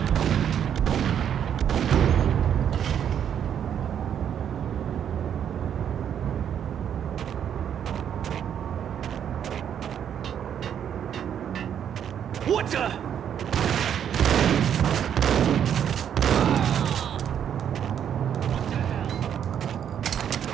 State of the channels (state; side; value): quieter; left; 9.0 dB